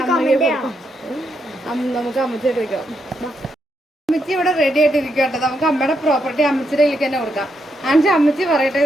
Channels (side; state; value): both; normal; correlation 0.80